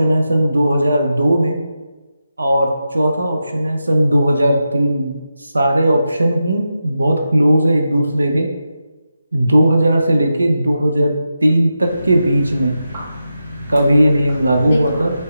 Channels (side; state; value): both; inverted; correlation -0.89